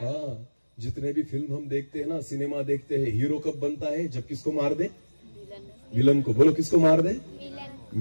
जितने भी फिल्म हम देखते हैं ना, सिनेमा देखते हैं, हीरो कब बनता है? जब किसको मार दे? विलन को। बोलो, किसको मार दे?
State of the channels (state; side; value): inverted; both; correlation -1.00